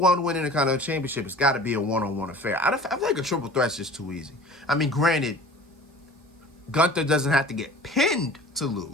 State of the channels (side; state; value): both; normal; correlation 0.43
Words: to win in the Intercontinental Championship, it's got to be a one-on-one affair. I feel like a triple threat's just too easy. I mean, granted, Gunther doesn't have to get pinned to